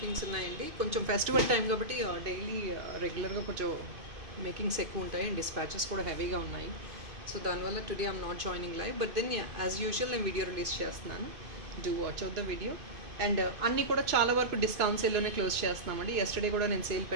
ఉన్నాయండి. కొంచెం ఫెస్టివల్ టైం కాబట్టి డైలీ రెగ్యులర్గా కొంచెం మేకింగ్స్ ఎక్కువ ఉంటాయి అండ్ డిస్పాచెస్ కూడా హెవీగా ఉన్నాయి. సో దానివల్ల today I'm not joining live, but then as usual నేను వీడియో రిలీజ్ చేస్తున్నాను. Do watch out the video. And అన్నీ కూడా చాలా వరకు డిస్కౌంట్ సేల్లోనే క్లోజ్ చేస్తున్నామండి. ఎస్టర్డే కూడా నేను సేల్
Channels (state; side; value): late; left; 2.5 ms